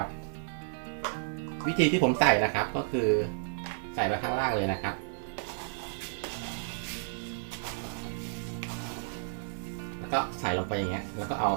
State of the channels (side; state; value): left; silent; 57 dB below the other